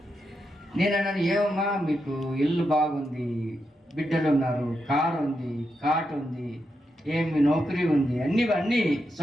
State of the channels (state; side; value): normal; both; correlation 0.85